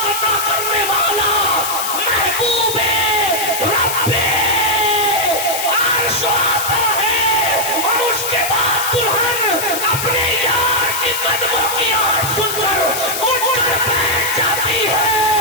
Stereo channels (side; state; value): left; noise; hiss, 4 dB below the sound